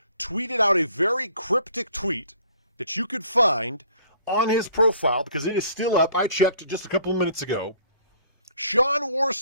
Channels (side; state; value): both; inverted; correlation -0.56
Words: tweeted out a very cryptic tweet that you could find on his profile because it is still up. I checked just a couple of minutes ago. Shawn